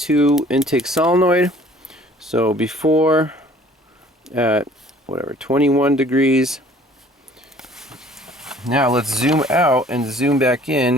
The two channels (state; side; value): normal; both; correlation 0.53